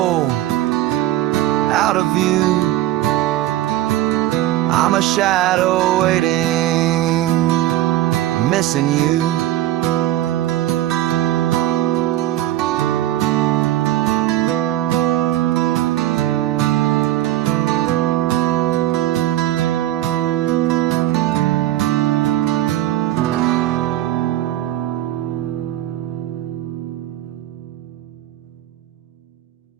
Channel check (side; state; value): left; quieter; 14.1 dB